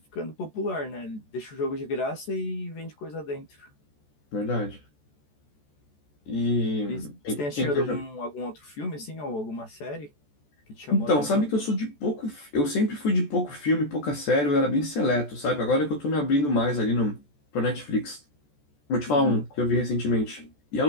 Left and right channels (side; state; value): right; late; 14 ms